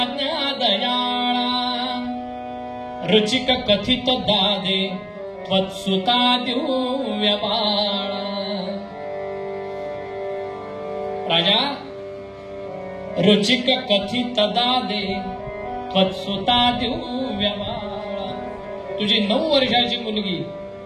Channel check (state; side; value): identical; both; correlation 1.00